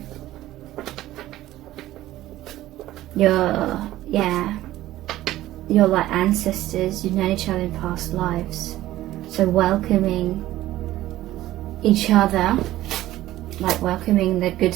You're like ancestors, you've known each other in past lives, so welcoming each other, like welcoming the good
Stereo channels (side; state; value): left; quieter; 15.1 dB